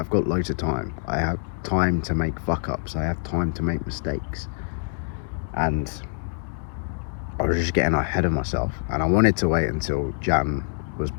got loads of time. I have time to make fuck ups. I have time to make mistakes, and I was just getting ahead of myself, and I wanted to wait until Jan was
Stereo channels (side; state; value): right; silent; 62 dB below the other